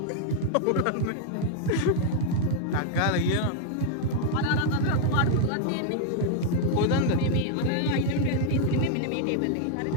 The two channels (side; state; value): both; different; correlation 0.00